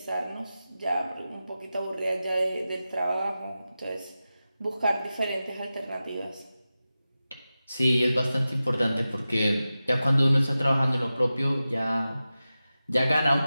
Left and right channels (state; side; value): inverted; both; correlation -0.94